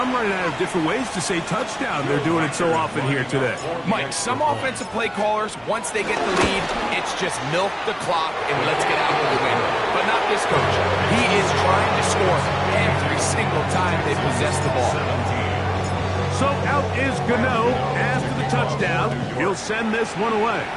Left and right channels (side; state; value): both; identical; correlation 1.00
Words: running out of different ways to say touchdown. They're doing it so often here today. Mike, some offensive play callers, once they get the lead, it's just milk the clock and let's get out with the win. But not this coach. He is trying to score every single time they possess the ball. So out is Gano after the touchdown. He'll send this one away.